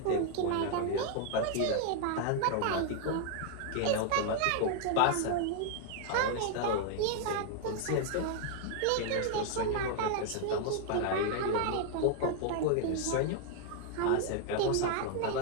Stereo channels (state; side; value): different; both; correlation 0.00